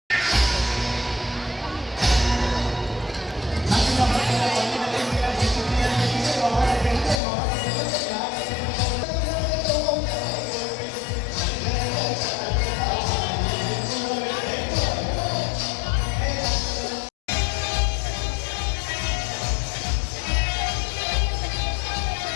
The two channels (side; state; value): right; drops out; at 7.2 s